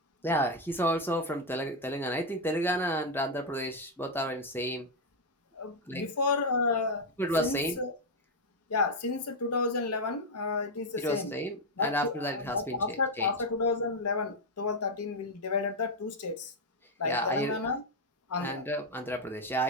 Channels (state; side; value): normal; both; correlation 0.02